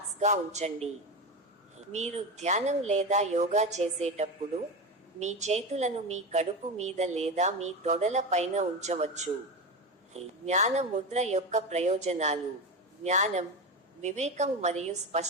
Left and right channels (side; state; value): both; normal; correlation 0.20